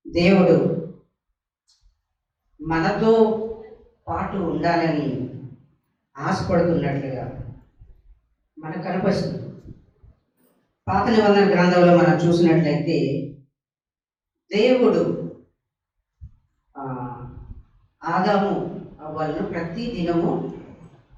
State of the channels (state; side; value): identical; both; correlation 1.00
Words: దేవుడు మనతో పాటు ఉండాలని ఆశపడుతున్నట్లుగా మనకు కనిపిస్తుంది. పాత నిబంధన గ్రంథంలో మనం చూసినట్లయితే దేవుడు ఆదాము అవ్వలను ప్రతి దినము